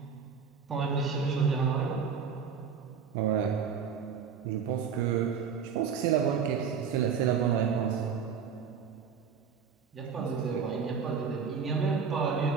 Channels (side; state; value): left; quieter; 6.5 dB